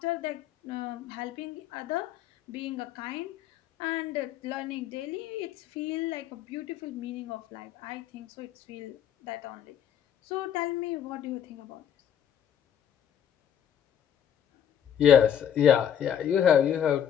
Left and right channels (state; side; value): quieter; right; 9.3 dB